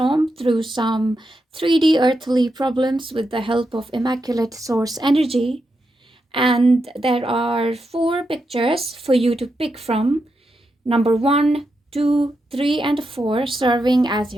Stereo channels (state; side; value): normal; both; correlation 0.85